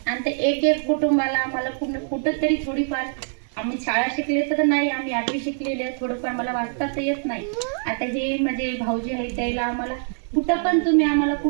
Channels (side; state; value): left; silent; digital silence